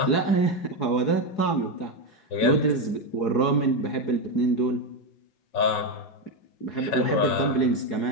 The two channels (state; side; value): late; right; 4.7 ms